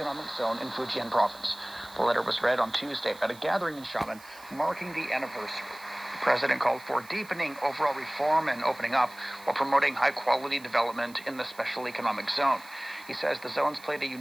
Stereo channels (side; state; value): right; noise; hiss, 22 dB below the sound